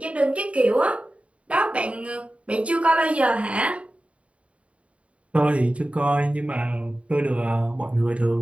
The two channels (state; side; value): late; left; 0.063 ms